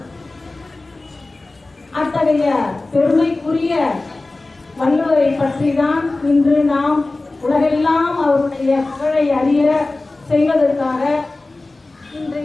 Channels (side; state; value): right; quieter; 3.1 dB